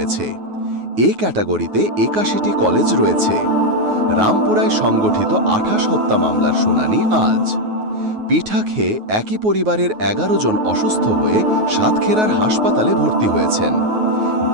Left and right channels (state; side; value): late; left; 9.4 ms